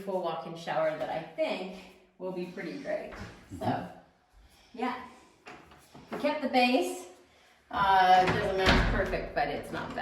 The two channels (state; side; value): identical; both; correlation 1.00